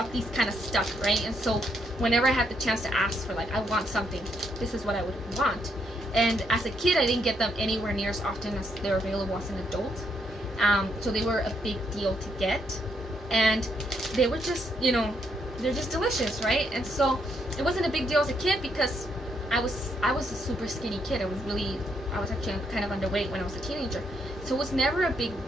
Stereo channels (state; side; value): normal; both; correlation 0.75